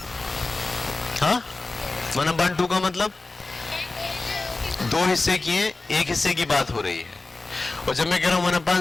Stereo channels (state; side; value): quieter; right; 3.4 dB